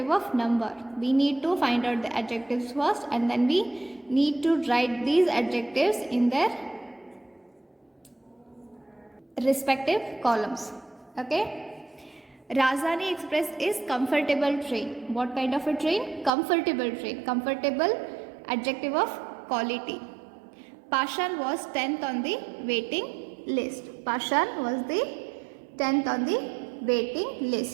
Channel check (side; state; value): left; drops out; at 16.3 s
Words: of number. We need to find out the adjectives first, and then we need to write these adjectives in their respective columns. Okay. Rajdhani Express is comfortable train. What kind of a train? Comfortable train. Comfortable, adjective of quality. Pashan was 10th on the waiting list. Pashan was the 10th on the waiting